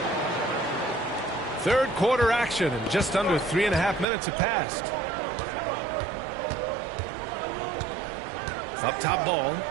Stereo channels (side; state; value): left; drops out; at 4.0 s